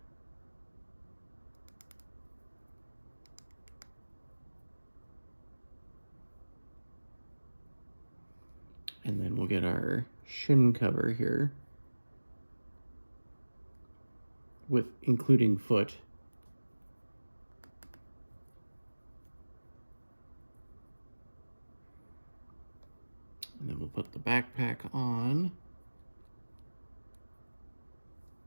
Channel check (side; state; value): both; inverted; correlation -1.00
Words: And then we'll get our shin cover here, with including foot. And then we'll put the backpack on.